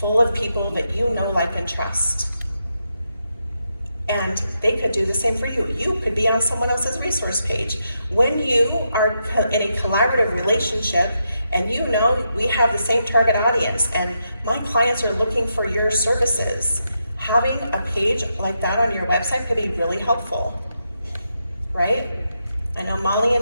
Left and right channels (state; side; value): inverted; both; correlation -0.84